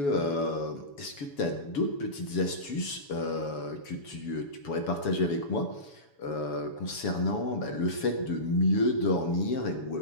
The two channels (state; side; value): late; right; 7.1 ms